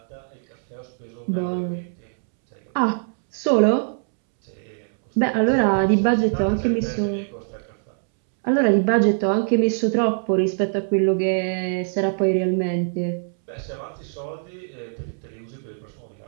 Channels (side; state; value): left; silent; 63 dB below the other